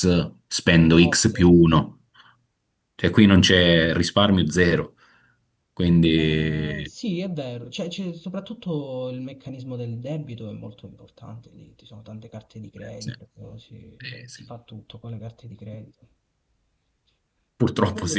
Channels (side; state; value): both; identical; correlation 1.00